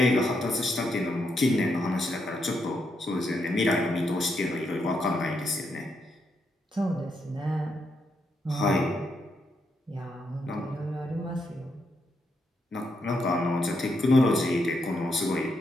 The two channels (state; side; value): normal; both; correlation 0.80